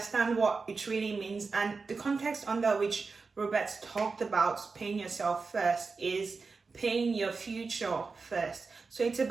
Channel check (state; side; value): quieter; left; 4.4 dB